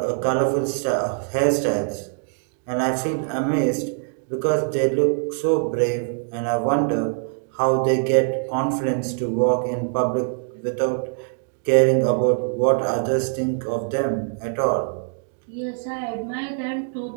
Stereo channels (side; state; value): left; silent; digital silence